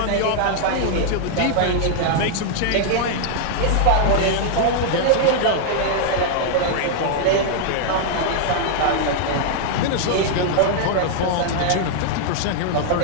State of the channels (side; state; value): both; different; correlation -0.01